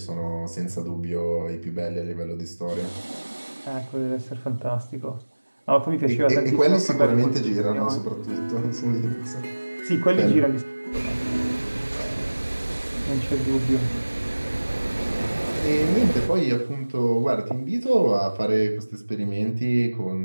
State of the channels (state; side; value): inverted; both; correlation -1.00